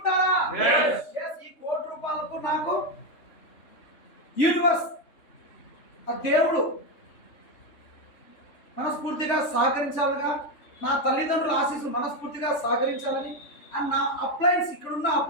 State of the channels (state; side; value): late; right; 3.3 ms